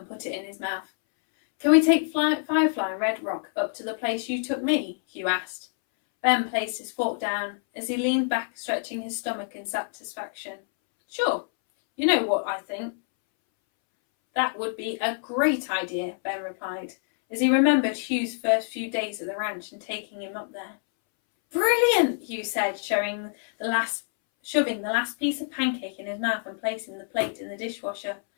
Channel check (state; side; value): silent; right; 60 dB below the other